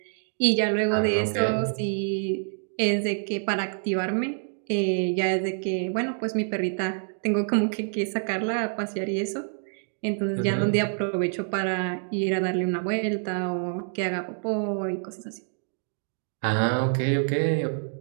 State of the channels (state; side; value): silent; left; digital silence